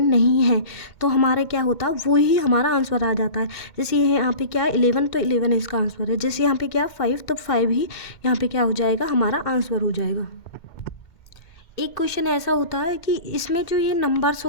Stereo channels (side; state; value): right; late; 2.1 ms